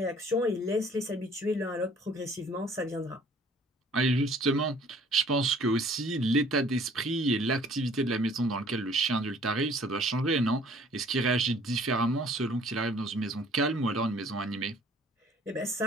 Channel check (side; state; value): both; normal; correlation 0.55